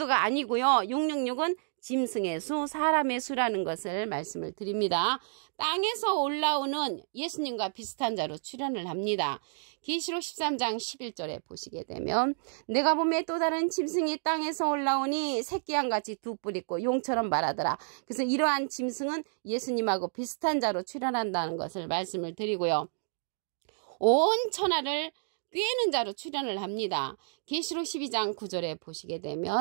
아니고요. 666은 짐승의 수, 사람의 수라는 것을 말씀을 드립니다. 땅에서 올라오는 예수님과 비슷한 자로 출현을 합니다. 계시록 13장 11절에 보시게 되면 내가 보매 또 다른 짐승이 땅에서 올라오니 새끼양같이 두 뿔 있고 용처럼 말하더라. 그래서 이러한 짐승은 예수님하고 비슷한 자로 출현한다는 것을 말씀을 드리고요. 온 천하를 꾀는 자로 출현을 합니다. 계시록 12장 9절에 보시게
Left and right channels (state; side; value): silent; left; digital silence